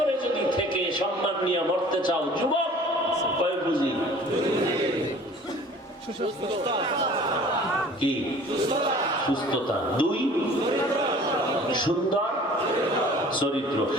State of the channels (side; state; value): both; normal; correlation 0.48